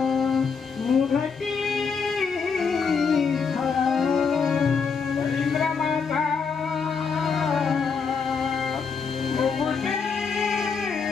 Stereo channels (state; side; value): quieter; right; 5.6 dB